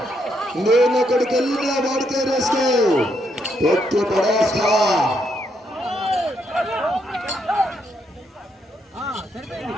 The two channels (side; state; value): both; normal; correlation 0.77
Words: నేను అక్కడికి వెళ్ళినా వాడితే రేసుకో, ఎత్తి పడేస్తా.